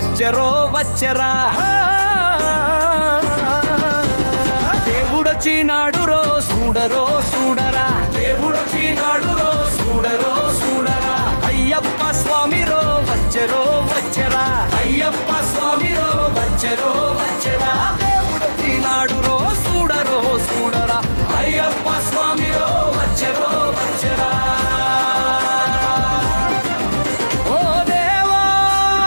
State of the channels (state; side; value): inverted; both; correlation -1.00